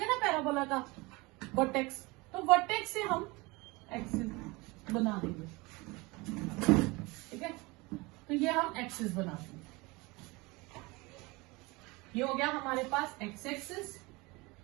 ना पैराबोला का वर्टेक्स, तो वर्टेक्स से हम एक्सिस बना देंगे, ठीक है। तो ये हम एक्सिस बनाते हैं, ये हो गया हमारे पास एक्स एक्सिस,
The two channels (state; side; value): quieter; left; 24.3 dB